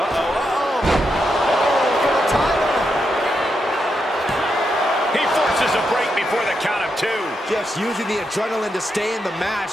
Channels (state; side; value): normal; both; correlation 0.84